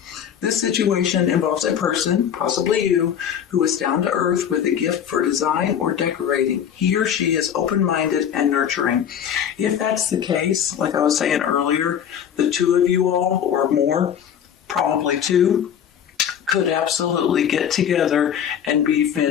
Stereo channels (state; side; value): quieter; right; 8.9 dB